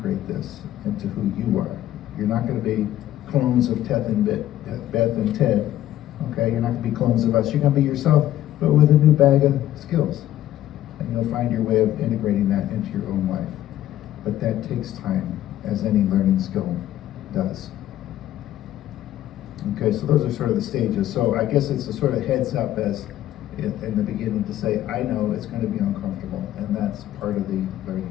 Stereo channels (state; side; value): quieter; right; 13.0 dB